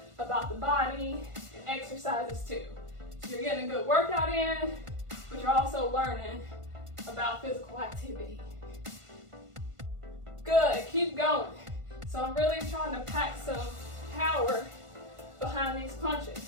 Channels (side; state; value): left; late; 1.5 ms